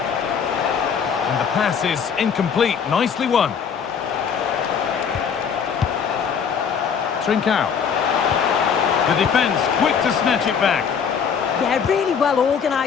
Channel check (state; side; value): quieter; right; 6.9 dB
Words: And the pass is incomplete. Nicely won. Trincao. The defence quick to snatch it back. Yeah, really well